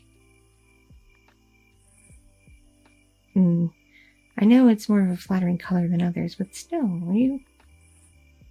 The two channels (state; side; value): identical; both; correlation 1.00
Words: I know it's more of a flattering color than others, but still,